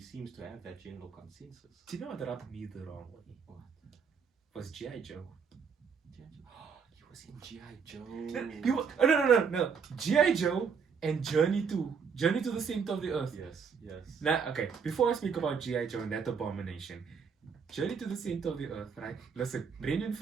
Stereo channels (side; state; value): left; quieter; 6.2 dB